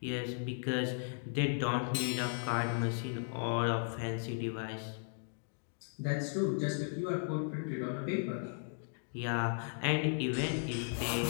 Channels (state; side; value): silent; right; digital silence